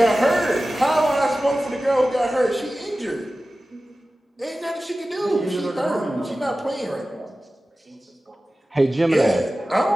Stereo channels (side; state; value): both; normal; correlation 0.95